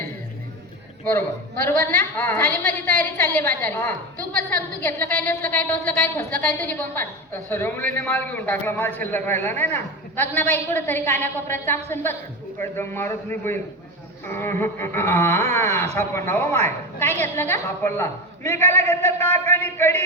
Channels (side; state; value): both; normal; correlation 0.20